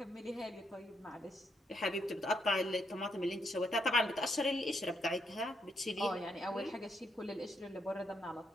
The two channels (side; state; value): both; normal; correlation 0.76